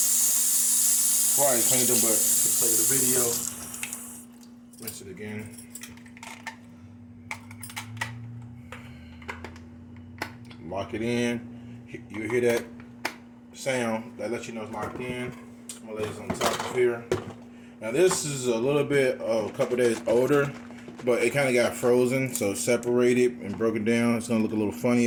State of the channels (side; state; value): both; identical; correlation 1.00